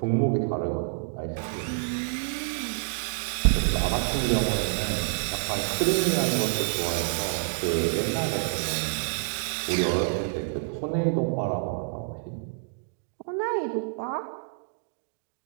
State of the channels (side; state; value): left; silent; digital silence